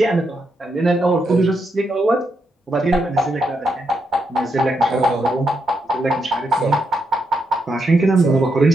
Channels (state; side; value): normal; both; correlation 0.81